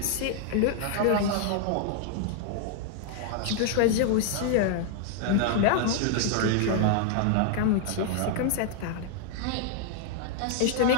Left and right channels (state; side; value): different; both; correlation 0.00